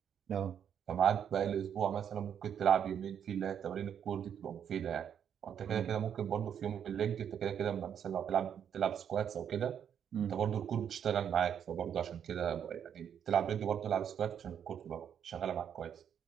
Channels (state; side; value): quieter; left; 8.6 dB